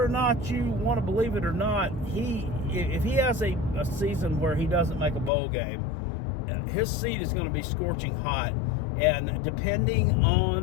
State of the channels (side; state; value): right; drops out; at 5.3 s